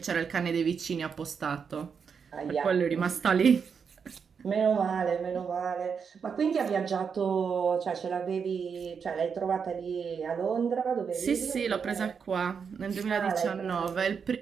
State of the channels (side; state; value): left; quieter; 6.3 dB